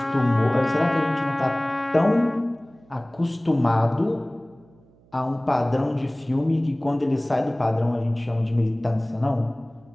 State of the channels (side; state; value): right; noise; hum, 29 dB below the sound